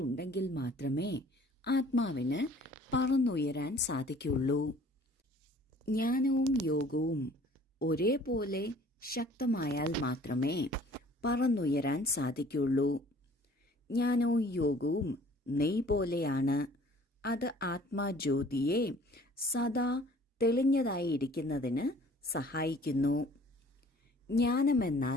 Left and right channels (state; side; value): normal; both; correlation 0.52